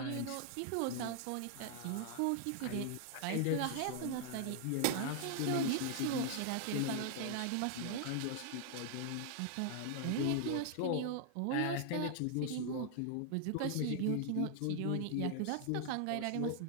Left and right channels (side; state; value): both; different; correlation 0.00